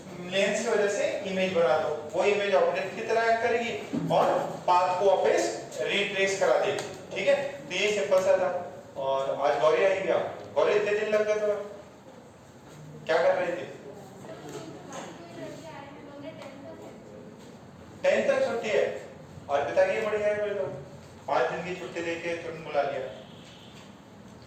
लेंस की वजह से इमेज बना दो, वो इमेज ऑब्जेक्ट की तरह एक्ट करेगी और पाथ को वापस रिट्रेस करा देगी, ठीक है। तो ये सिंपल सा था। और आज गौरी आई गया, गौरी इतने दिन लग गए तो क्या कर रहे थे? 10 तक छुट्टी है और पिता की बढ़िया है, तो 5 दिन की छुट्टी देके तुरंत बुला लिया,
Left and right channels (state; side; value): identical; both; correlation 1.00